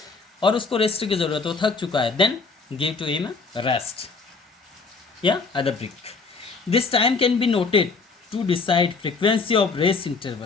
और उसको रेस्ट की ज़रूरत है, वो थक चुका है. Then give to him rest या other break. This time can be noted to decide frequency of rest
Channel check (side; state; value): right; quieter; 4.5 dB